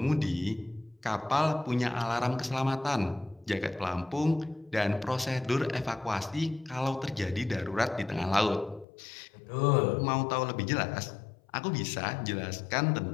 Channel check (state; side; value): drops out; right; at 8.8 s